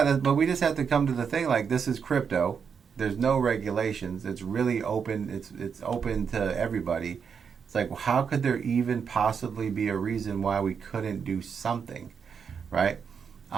but we just have to come to the thing. Like, this is crypto. There's no regulations. It's really open. It's open to everybody. It's like, how could there even possibly be a reason why we couldn't do something, right?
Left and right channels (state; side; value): quieter; left; 6.6 dB